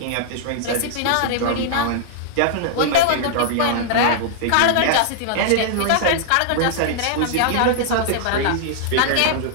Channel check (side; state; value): both; different; correlation -0.01